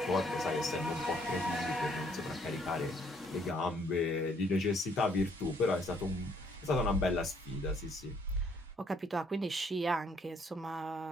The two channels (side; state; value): both; normal; correlation 0.66